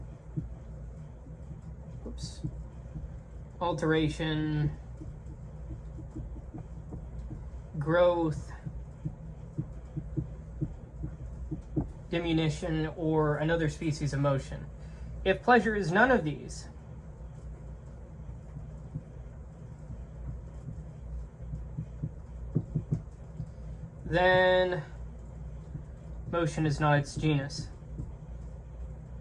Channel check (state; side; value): identical; both; correlation 1.00